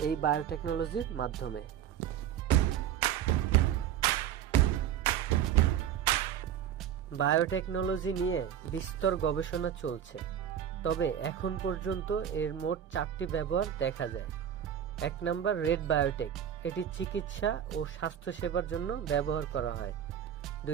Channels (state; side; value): quieter; left; 9.7 dB